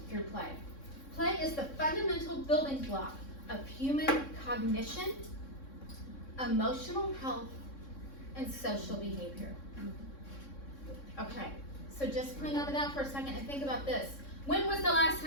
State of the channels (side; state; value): right; late; 3.6 ms